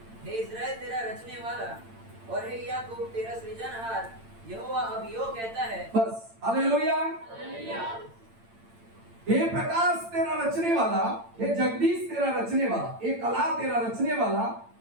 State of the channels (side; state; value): left; late; 8.8 ms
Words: रचने वाला और हे याकूब तेरा सृजनहार यहोवा अब यूं कहता है। बस। हालेलुया। हे प्रकाश तेरा रचने वाला, हे जगदीश तेरा रचने वाला, हे कला तेरा रचने वाला,